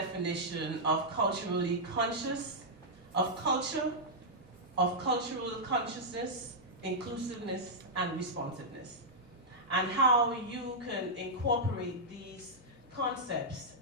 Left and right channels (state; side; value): noise; right; hum, 28 dB below the sound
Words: of culturally conscious, of culture, of cultural consciousness, inclusiveness, and responsiveness, and how you can incorporate these concepts